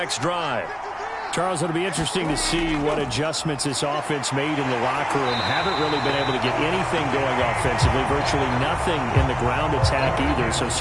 drive. Charles, it'll be interesting to see what adjustments this offense made in the locker room. Haven't really been able to get anything going offensively, virtually nothing in the ground attack either. So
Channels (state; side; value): identical; both; correlation 1.00